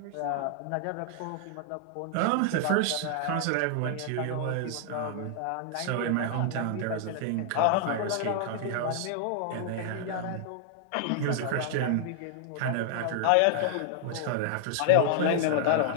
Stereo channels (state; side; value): different; both; correlation 0.00